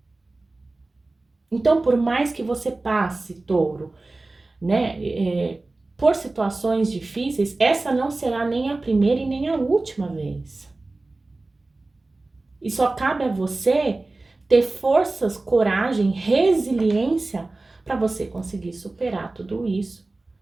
Então, por mais que você passe, touro, né, por situações difíceis, essa não será nem a primeira e nem a última vez. E só cabe a você ter forças, coragem, resiliência para você conseguir superar tudo isso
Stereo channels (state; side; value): quieter; left; 3.2 dB